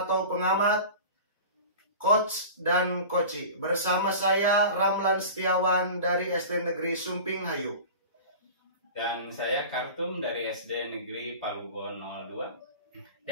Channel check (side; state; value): both; inverted; correlation -0.36